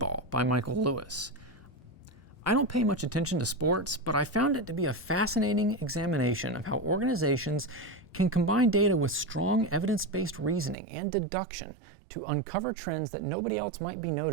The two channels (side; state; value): left; drops out; at 10.8 s